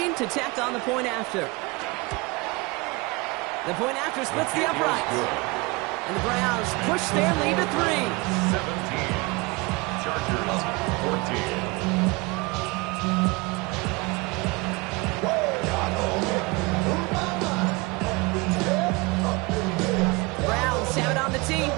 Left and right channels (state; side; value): quieter; left; 25.7 dB